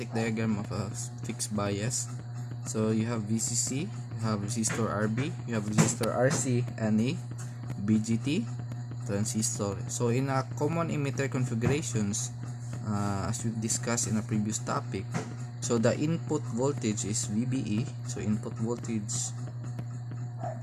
diagram of a fixed bias. So you have VCC, you have resistor RB, you have resistor RC, and a BGT transistor. So in a common emitter configurations, as we've discussed in a previous topic, so the input voltage is VBE. So input voltage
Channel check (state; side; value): identical; both; correlation 1.00